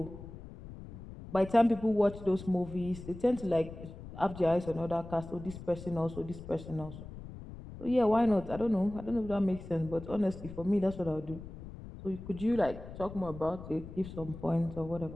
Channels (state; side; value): noise; left; rumble, 13 dB below the sound